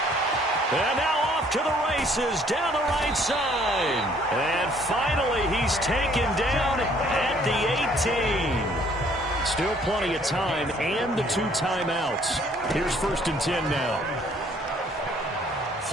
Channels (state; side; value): normal; both; correlation 0.61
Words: And now off to the races down the right side. And finally he's taken down at the 18. Still plenty of time and the 2 timeouts. Here's 1st and 10 now.